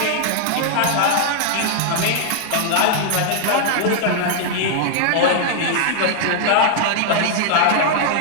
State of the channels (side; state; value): both; different; correlation 0.00